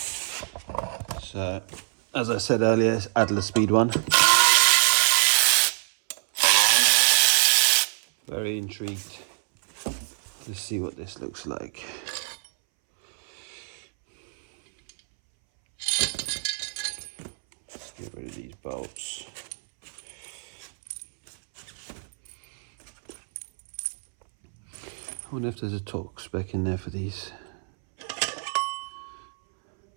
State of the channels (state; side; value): silent; left; 61 dB below the other